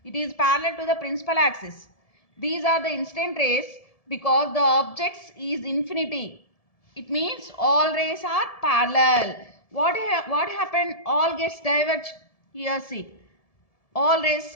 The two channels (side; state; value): right; late; 1.7 ms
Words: It is parallel to the principal axis. These are the incident rays because the objects is infinity. It means all rays are parallel. What happened? All gets diverged. Here see. All rays